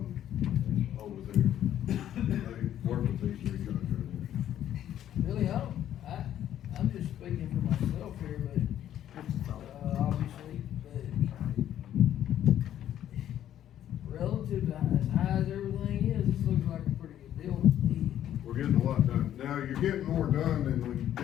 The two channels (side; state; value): right; quieter; 11.2 dB